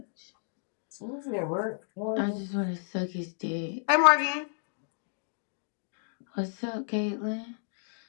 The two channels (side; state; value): right; silent; digital silence